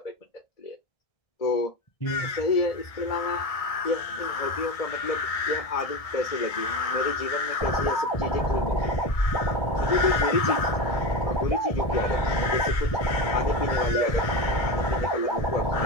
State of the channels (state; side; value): late; right; 1.6 ms